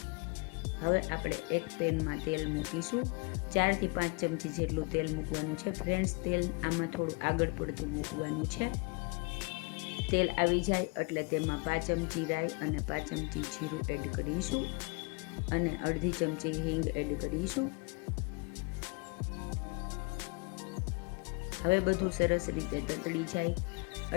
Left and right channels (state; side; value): quieter; right; 31.5 dB